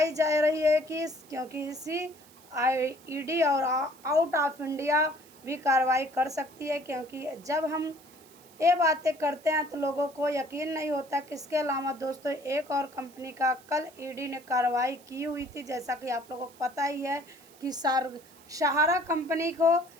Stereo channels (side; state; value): right; noise; hiss, 25 dB below the sound